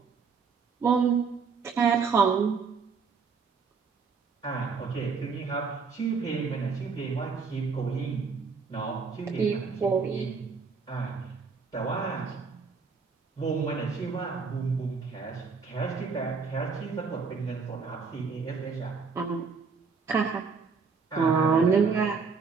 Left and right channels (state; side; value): quieter; left; 5.2 dB